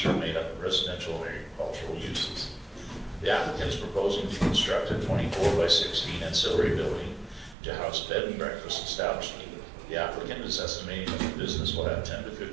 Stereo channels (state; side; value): drops out; left; at 7.6 s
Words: are made up of residential and agricultural uses. The applicant is proposing to construct a 24 by 16 ancillary building to house a bed and breakfast establishment. The applicant is estimating that the business will have 10 to